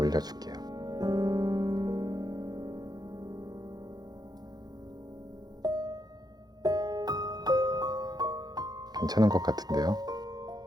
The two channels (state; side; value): late; left; 0.19 ms